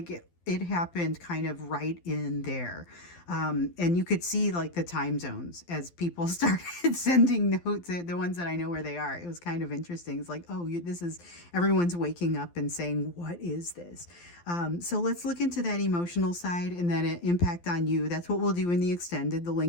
it happened kind of right in there. And you could see like the time zones as people started sending notes, the ones that I know where they are. It was kind of interesting. It's like, oh, this is, everyone's waking up and saying, what is this? So let's look into that emotional side and then impact on you. That's what we'll do in the extended. The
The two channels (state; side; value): late; right; 12 ms